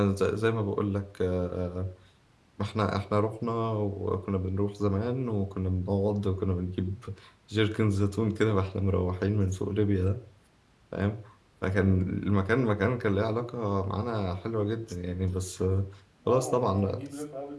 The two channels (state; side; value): identical; both; correlation 1.00